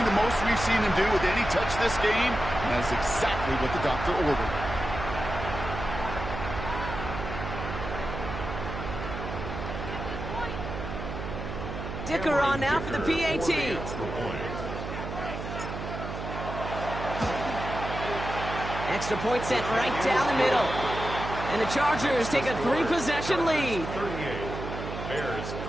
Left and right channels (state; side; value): noise; right; hum, 6 dB below the sound